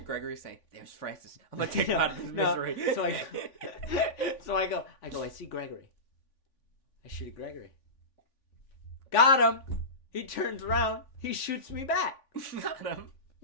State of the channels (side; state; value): right; late; 3.5 ms